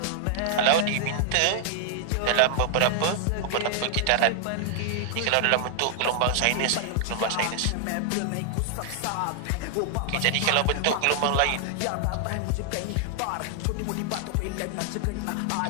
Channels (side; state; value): both; different; correlation -0.01